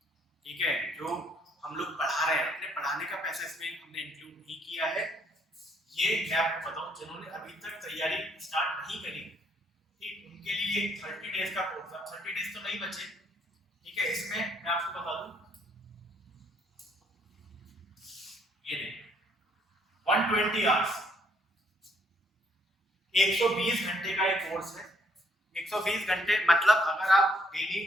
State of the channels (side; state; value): both; normal; correlation 0.68